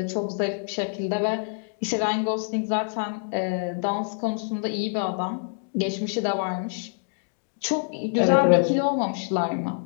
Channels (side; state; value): right; silent; 61 dB below the other